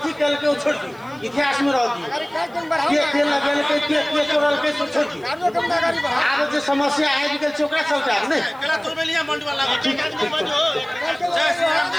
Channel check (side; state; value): right; noise; hiss, 30 dB below the sound